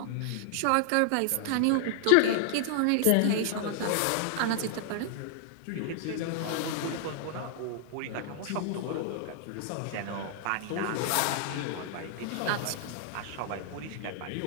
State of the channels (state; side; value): different; both; correlation 0.00